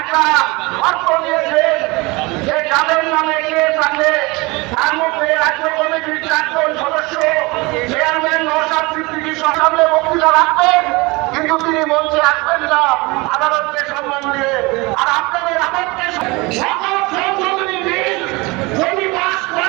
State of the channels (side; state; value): left; quieter; 24.6 dB